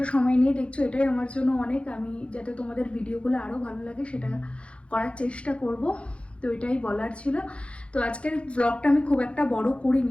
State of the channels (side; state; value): right; late; 0.060 ms